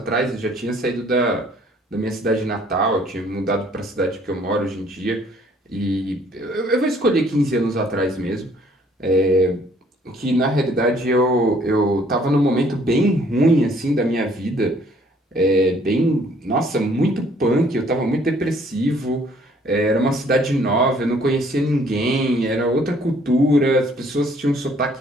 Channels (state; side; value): normal; both; correlation 0.61